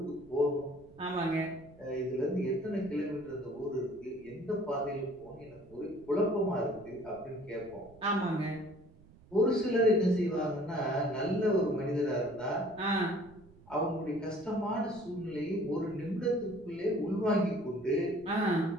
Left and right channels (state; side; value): noise; right; rumble, 24 dB below the sound